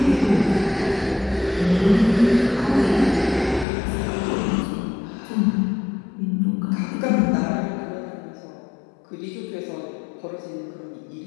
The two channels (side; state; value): right; drops out; at 3.7 s